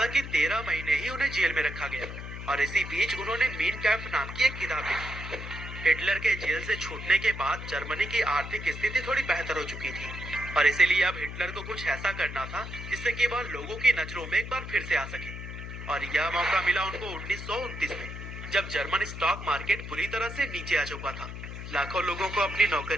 13 महीने ही उन्हें जेल में रखा गया, और इसी बीच उन्होंने मीन कैंप नाम की एक किताब लिखी। हिटलर के जेल से छूटने के बाद जर्मनी की आर्थिक स्थिति थोड़ी बेहतर हो चुकी थी, और इसीलिए अब हिटलर को कुछ ऐसा करना था जिससे कि वह लोगों की नजरों में एक बार फिर से आ सके। और यह मौका मिला उनको 1929 में, जब जर्मन स्टॉक मार्केट बुरी तरह से नीचे आ चुका था। लाखों लोगों को अपनी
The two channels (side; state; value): left; noise; hum, 9 dB below the sound